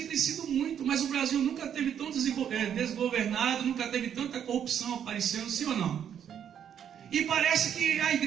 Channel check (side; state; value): left; quieter; 8.9 dB